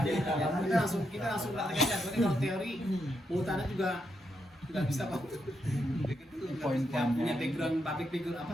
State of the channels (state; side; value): normal; both; correlation 0.81